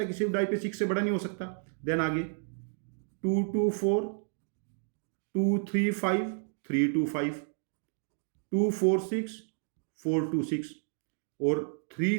है, किसी भी डाई पे 6 से बड़ा नहीं हो सकता। देन आगे 2, 2, 4, 2, 3, 5, 3, 2, 5, 2, 4, 6, 4, 2, 6 और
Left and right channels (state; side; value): silent; left; 57 dB below the other